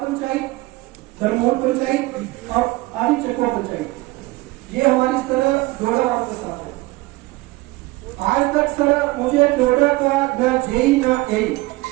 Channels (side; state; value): left; quieter; 20.7 dB